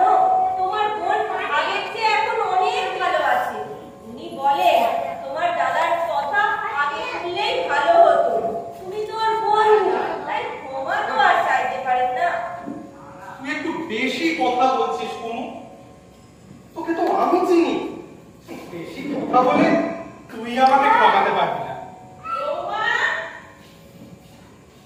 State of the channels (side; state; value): both; identical; correlation 1.00